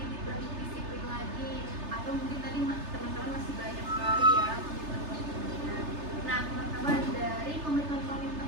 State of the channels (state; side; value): late; left; 3.3 ms